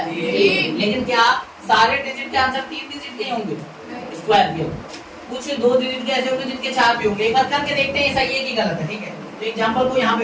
लेकिन क्या सारे डिजिट के आंसर 3 डिजिट के होंगे स्क्वायर के? कुछ 2 डिजिट के ऐसे होंगे जिनके 4 भी होंगे। एक बार करके देखते हैं सही है कि गलत है। ठीक है? तो एग्जांपल को यहाँ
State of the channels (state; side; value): identical; both; correlation 1.00